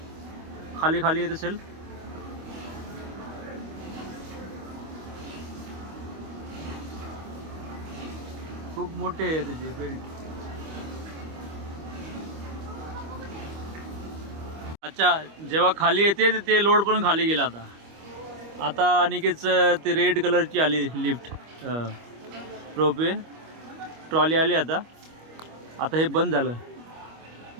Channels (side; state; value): left; late; 25 ms